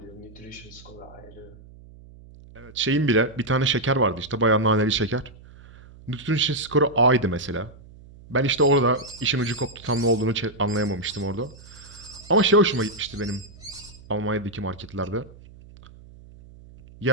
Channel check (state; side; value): noise; right; hum, 21 dB below the sound